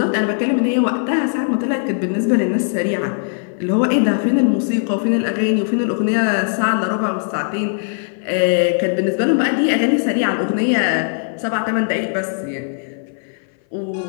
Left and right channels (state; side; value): silent; right; 58 dB below the other